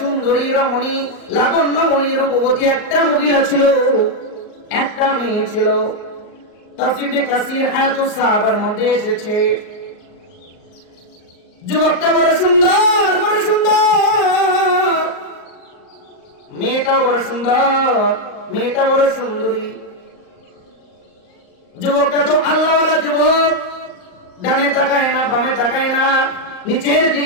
রমণী লাবণ্যময়ী রূপবতী একটা মহিলা ছিল। একটা মেয়ে ছিল। তাফসীরে কাসির হায়াতুস সাহাবার মধ্যে এসেছে, যুবকটা বড় সুন্দর, বড় সুন্দর, মেয়েটাও বড় সুন্দর, মেয়েটা বড় সুন্দরী। যুবকটা তো আল্লাহওয়ালা যুবক, ডানে তাকায় না, বামে তাকায় না, নিচের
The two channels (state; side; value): late; right; 38 ms